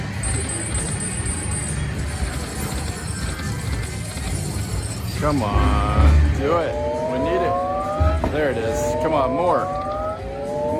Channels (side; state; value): both; identical; correlation 1.00